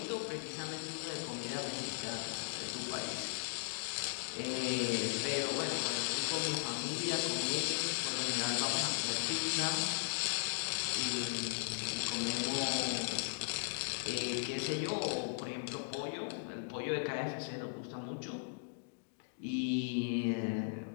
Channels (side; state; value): right; silent; digital silence